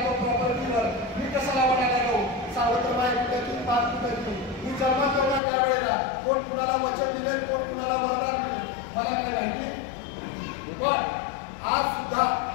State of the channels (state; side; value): drops out; right; at 5.4 s